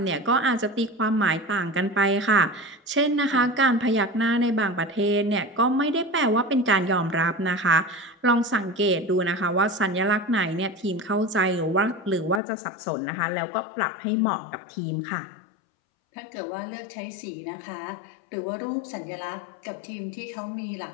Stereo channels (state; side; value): drops out; right; at 12.4 s